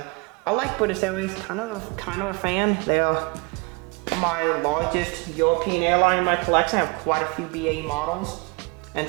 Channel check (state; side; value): quieter; left; 31.5 dB